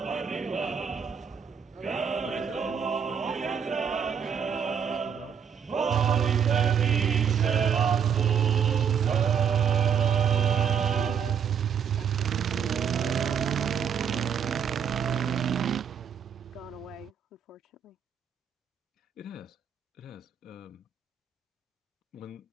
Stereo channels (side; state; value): left; quieter; 7.3 dB